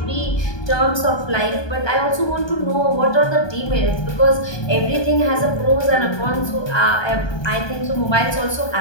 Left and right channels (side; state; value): right; late; 1.2 ms